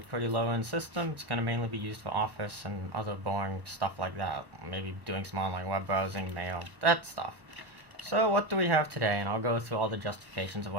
a pretty low-end system. It's going to mainly be used for office and other boring stuff like that. Maybe doing some online web browsing, mail, that stuff. So what do we have today? And I'll go through all the justifications of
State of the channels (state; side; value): late; left; 1.2 ms